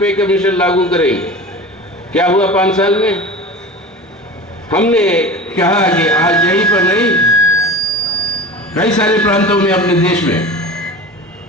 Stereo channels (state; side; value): normal; both; correlation 0.33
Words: पे कमीशन लागू करेंगे। क्या हुआ 5 साल में? हमने कहा कि आज यहीं पर नहीं, कई सारे प्रांतों में अपने देश में